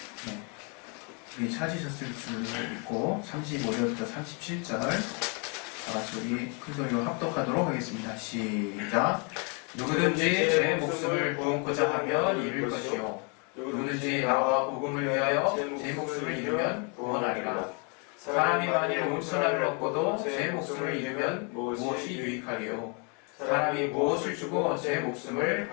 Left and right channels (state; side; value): quieter; right; 35.7 dB